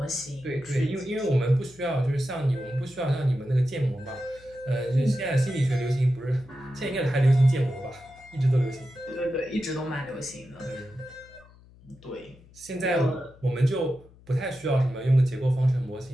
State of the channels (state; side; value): noise; left; hum, 25 dB below the sound